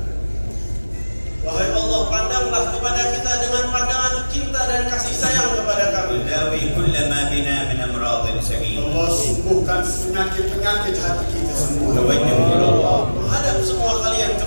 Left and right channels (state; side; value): inverted; both; correlation -1.00